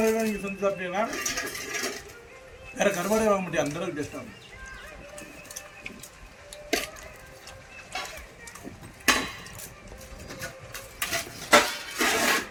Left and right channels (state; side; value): identical; both; correlation 1.00